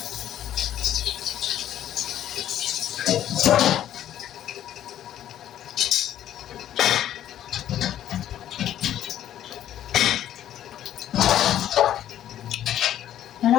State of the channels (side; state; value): right; quieter; 11.5 dB